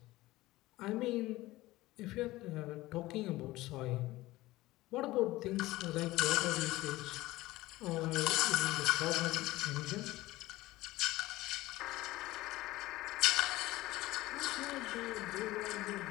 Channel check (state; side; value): quieter; right; 18.2 dB